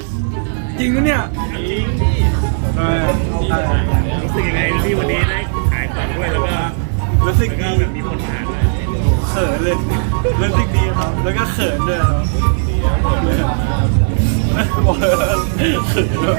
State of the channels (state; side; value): silent; left; digital silence